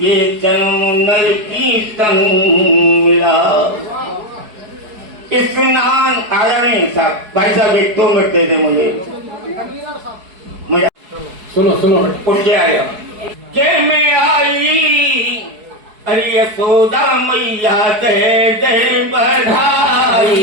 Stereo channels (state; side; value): late; left; 4.7 ms